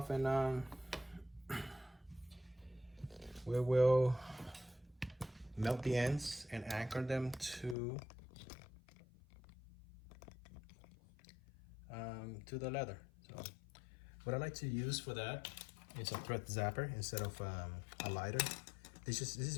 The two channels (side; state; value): right; drops out; at 7.8 s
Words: and we will melt the ends and anchor them to the leather. So what I like to use for that is a thread zapper instead of a lighter. This is